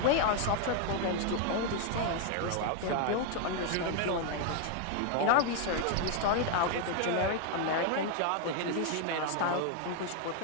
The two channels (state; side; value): different; both; correlation 0.00